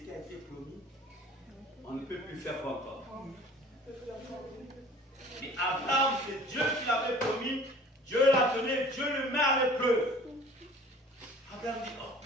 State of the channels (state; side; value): normal; both; correlation 0.47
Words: a été promis, on ne peut plus faire encore. Mais Abraham, c'est Dieu qui l'avait promis, Dieu l'a donné, Dieu le met à l'épreuve. Abraham dit, oh,